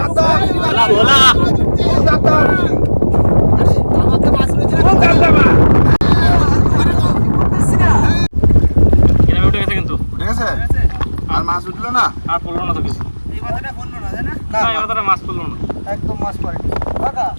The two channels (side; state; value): both; inverted; correlation -1.00